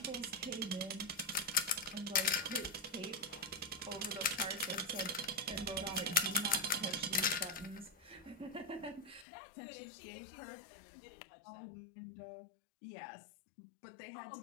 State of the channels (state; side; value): drops out; right; at 9.2 s